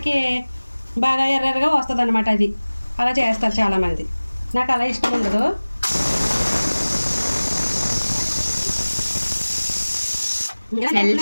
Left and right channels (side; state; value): both; inverted; correlation -1.00